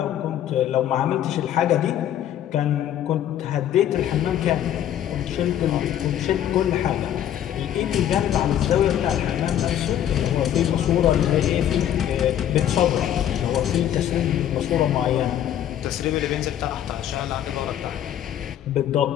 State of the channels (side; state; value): right; quieter; 10.8 dB